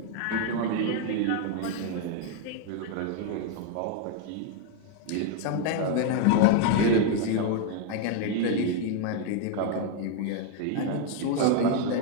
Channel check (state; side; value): different; both; correlation 0.01